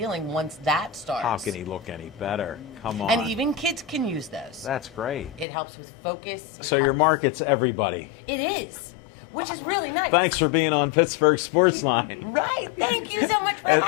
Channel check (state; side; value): drops out; right; at 5.5 s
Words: once that starts. How can he look any better? Come on. And even kids can use those. That's great. It helps with focus. So your market's everybody. It is, which is really nice. Thanks for being on Pittsburgh Sports Line. Right. Thank you so much for